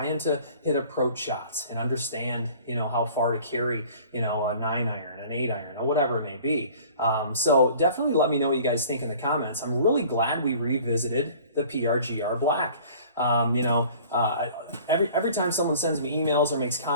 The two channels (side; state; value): both; inverted; correlation -0.48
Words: to hit approach shots and understand, you know, how far to carry, you know, a 9-iron, an 8-iron, or whatever it may be. So definitely let me know what you guys think in the comments. I'm really glad we revisited the PRGR Black. You know, every time someone sends me emails or makes